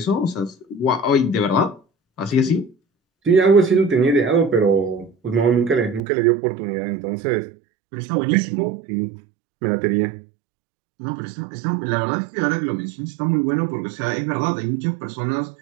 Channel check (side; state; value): left; drops out; at 6.0 s